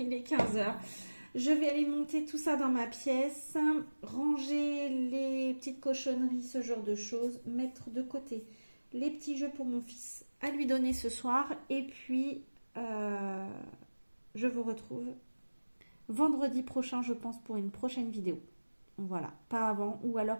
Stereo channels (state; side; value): inverted; both; correlation -1.00